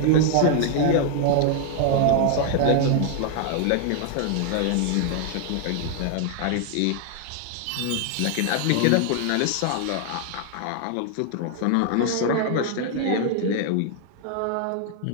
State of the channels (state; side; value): different; both; correlation 0.00